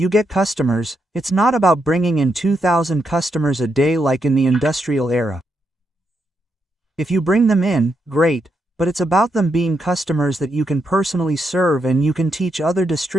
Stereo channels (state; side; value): normal; both; correlation 0.81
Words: get customers. It's not about bringing in 2,000 customers a day like in the industrial era. If you bring them in, great, but it's about them being customers that you can personally serve, and you can teach other